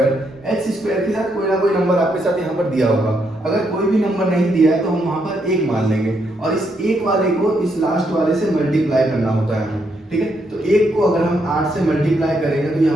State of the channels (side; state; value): both; normal; correlation 0.77